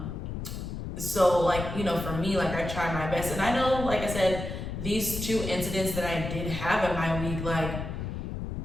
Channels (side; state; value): left; noise; rumble, 6 dB below the sound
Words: So for me, I try my best. And I know, like I said, these 2 incidents that I did have in my week,